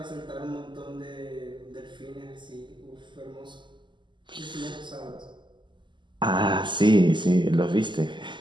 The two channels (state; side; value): late; left; 0.23 ms